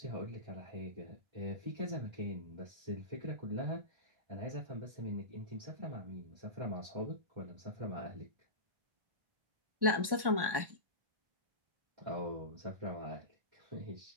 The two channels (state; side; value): late; left; 1.1 ms